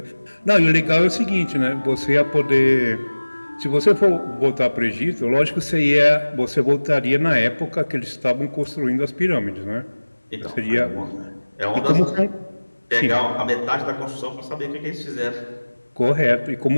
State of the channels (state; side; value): inverted; both; correlation -1.00